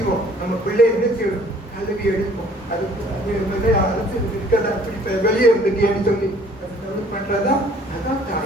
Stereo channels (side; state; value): both; normal; correlation 0.56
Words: நம்ம பிள்ளை என்ன செய்யணும், கல்வி எடுப்போம். அது அரசு இருக்கிறதா அப்படி வெளியே இருந்துட்டேன்னு சொல்லி பண்றதா, அதான்